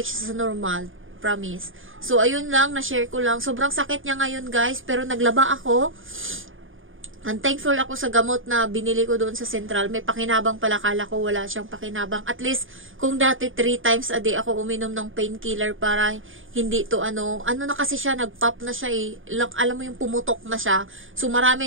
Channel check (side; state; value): left; late; 0.58 ms